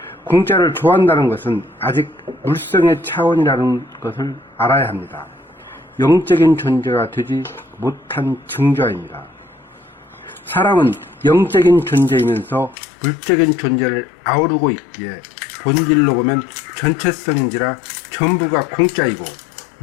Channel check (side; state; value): right; drops out; at 12.8 s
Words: 공짜를 좋아한다는 것은 아직 물성의 차원이라는 것을 알아야 합니다. 영적인 존재가 되지 못한 증조입니다. 사람은 영적인 존재이면서 물적인 존재를 아우르고 있기에 본질로 보면 전체성인지라 전부가 공짜이고